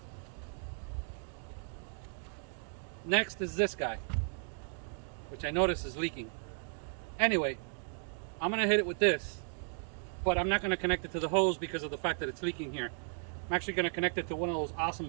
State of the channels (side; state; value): left; silent; 54 dB below the other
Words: Next is this guy, which I notice is leaking. Anyway, I'm gonna hit it with this, but I'm not gonna connect it to the hose because of the fact that it's leaking here. I'm actually gonna connect it to one of those awesome